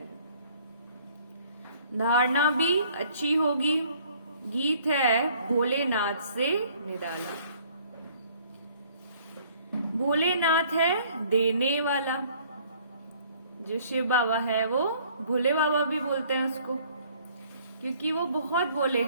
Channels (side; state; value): both; inverted; correlation -0.58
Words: धारणा भी अच्छी होगी। गीत है भोलेनाथ से निराला। भोलेनाथ है देने वाला। जो शिव बाबा है वो भोले बाबा भी बोलते हैं उसको, क्योंकि वो बहुत भोले